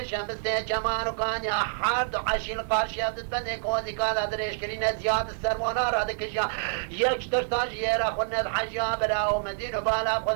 شمسته جمان وكان يا حرد عشيل قارش يبدو بني كوزي قال دريش كرين زياد السرمونا رادك جا يكتر تاج يرا خن الحجا براو مدينه بالا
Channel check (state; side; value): silent; left; 60 dB below the other